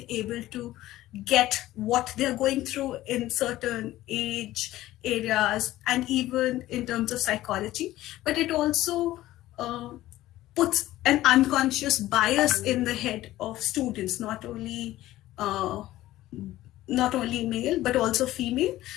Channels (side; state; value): right; quieter; 15.5 dB